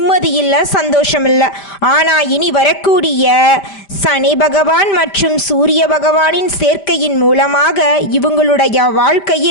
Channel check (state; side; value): late; right; 5.1 ms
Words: இல்லை, சந்தோஷம் இல்லை. ஆனா இனி வரக்கூடிய சனி பகவான் மற்றும் சூரிய பகவானின் சேர்க்கையின் மூலமாக இவங்களுடைய